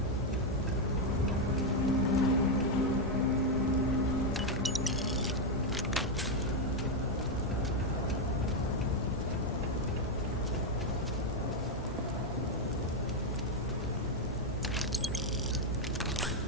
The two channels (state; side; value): normal; both; correlation 0.03